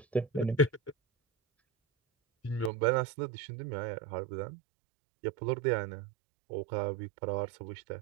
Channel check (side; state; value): left; drops out; at 2.7 s